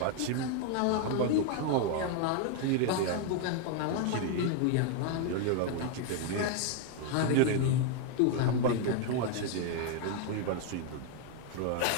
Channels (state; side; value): different; both; correlation 0.00